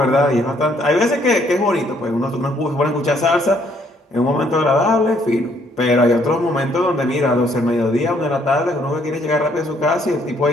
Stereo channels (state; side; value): normal; both; correlation 0.67